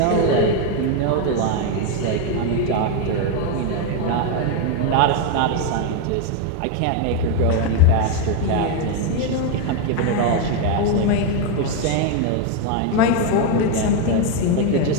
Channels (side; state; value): both; different; correlation 0.01